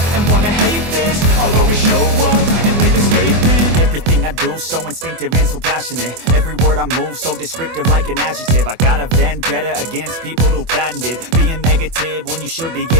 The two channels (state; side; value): late; left; 24 ms